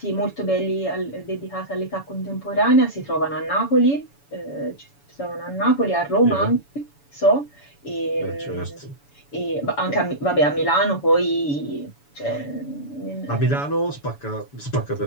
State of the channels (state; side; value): late; right; 7.0 ms